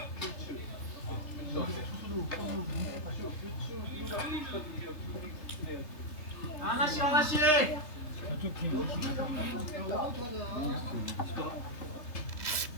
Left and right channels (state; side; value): late; right; 3.2 ms